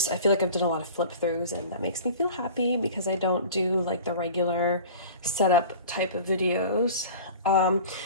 like I've done a lot of flip throughs, and that makes me feel happy because I don't do like the regular setup type of videos.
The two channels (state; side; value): inverted; both; correlation -0.40